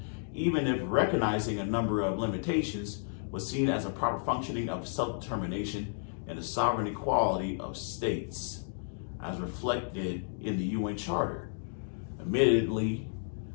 even if recognizing a number of limitations, was seen as a proper functioning of self-determination and the sovereign equality of states, as reflected in the UN Charter. Admittedly,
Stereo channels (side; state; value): right; silent; digital silence